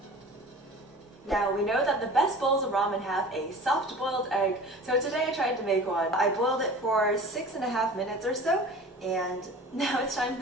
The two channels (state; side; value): normal; both; correlation 0.40